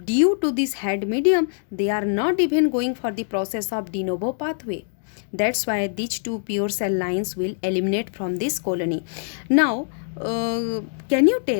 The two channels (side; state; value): right; silent; digital silence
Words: due to this head medium, they are not even going for the process of de novo pathway. That's why these two pure cell lines will eliminate from this colony. Now, can you